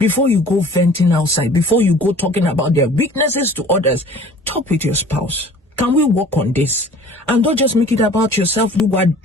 you go venting outside, before you go talking about their weaknesses to others, talk with your spouse. Can we work on this? And don't just make it about yourself. You are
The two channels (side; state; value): both; normal; correlation 0.48